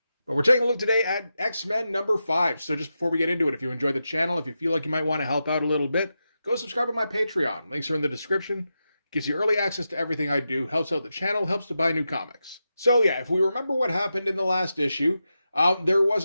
But we're taking a look today at X-Men number 5. So just before we get into it, if you enjoyed the channel, if you feel like you might want to help out a little bit, go subscribe to my Patreon. Links are in the description. Gives you early access to everything I do, helps out the channel, helps to buy new comics. So yeah, if we remember what happened in the last issue, there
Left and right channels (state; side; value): inverted; both; correlation -0.89